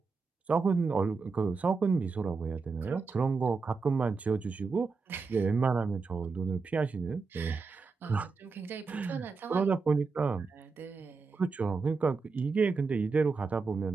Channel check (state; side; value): quieter; left; 4.6 dB